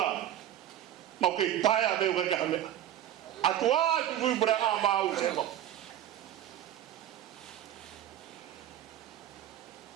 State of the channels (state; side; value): quieter; left; 11.8 dB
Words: mau ke taia beu ke hame atua fui pureanga mau sepo